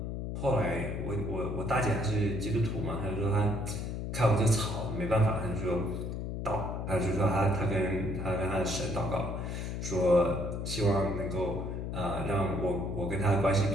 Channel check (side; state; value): left; noise; hum, 4 dB below the sound